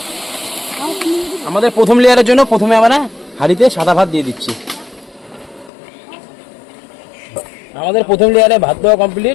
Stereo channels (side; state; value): right; drops out; at 5.7 s